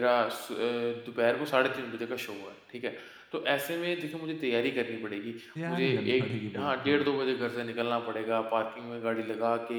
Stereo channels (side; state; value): both; identical; correlation 1.00